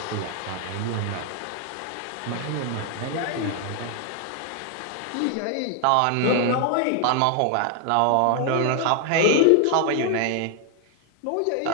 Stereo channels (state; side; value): different; both; correlation 0.00